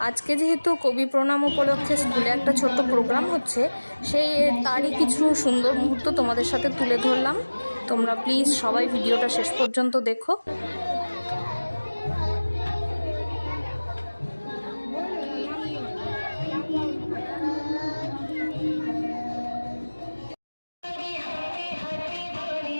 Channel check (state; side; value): inverted; both; correlation -1.00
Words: আজকে যেহেতু কবি প্রণাম উপলক্ষে স্কুলে একটা ছোট্ট প্রোগ্রাম হচ্ছে, তারই কিছু সুন্দর মুহূর্ত তোমাদের সাথে তুলে ধরলাম। তোমরা প্লিজ সবাই ভিডিওটা শেষ পর্যন্ত দেখো।